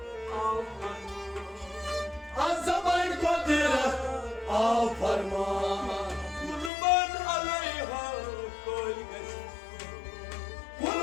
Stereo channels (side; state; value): right; drops out; at 6.7 s